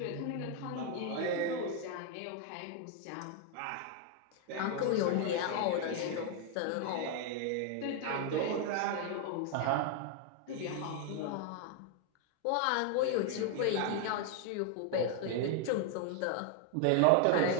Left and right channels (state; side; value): different; both; correlation 0.00